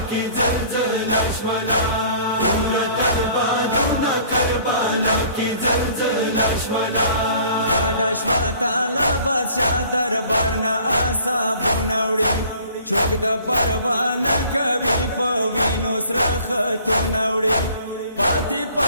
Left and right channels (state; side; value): inverted; both; correlation -0.53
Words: کی زلزلہ شولا उरत البادونا کربلا کی زلزلہ شولا گاڑا شوا تالا بادشاہ دربارنا آسابو نوڑی چوک دا پروانه کوي په وینو سره خطو نوړي پاتې